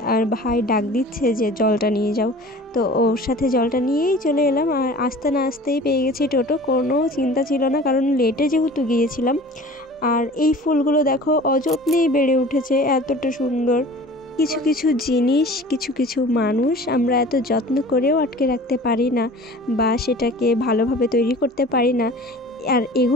আর ভাই ডাক দিচ্ছে যে জলটা নিয়ে যাও, তো ওর সাথে জলটা নিয়েই চলে এলাম। আর আসতে না আসতেই পেয়ে গেছি টোটো, কোনো চিন্তা ছিল না কারণ লেটে যেহেতু গিয়েছিলাম। আর এই ফুলগুলো দেখো অযত্নেই বেড়ে উঠেছে, এতটা সুন্দর। কিছু কিছু জিনিস, কিছু কিছু মানুষ আমরা এত যত্ন করেও আটকে রাখতে পারি না বা সেটাকে ভালোভাবে তৈরি করতে পারি না, আর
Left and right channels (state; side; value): normal; both; correlation 0.43